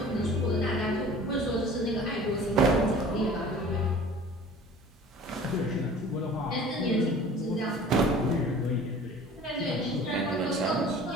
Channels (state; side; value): normal; both; correlation 0.45